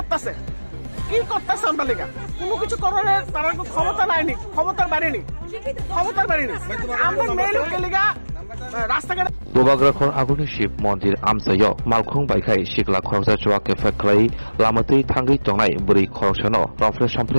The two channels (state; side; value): inverted; both; correlation -1.00